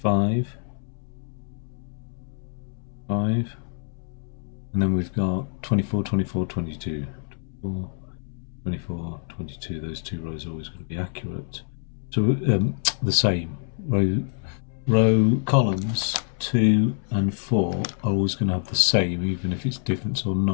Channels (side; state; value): right; silent; 61 dB below the other